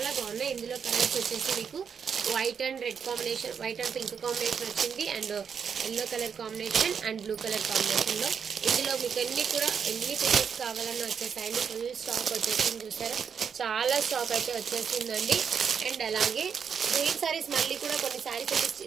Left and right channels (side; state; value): left; quieter; 6.9 dB